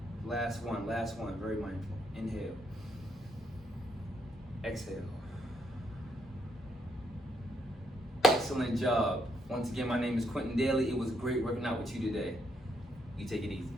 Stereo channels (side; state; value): both; normal; correlation 0.74